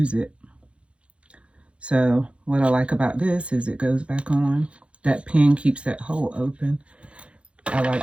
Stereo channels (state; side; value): late; left; 0.060 ms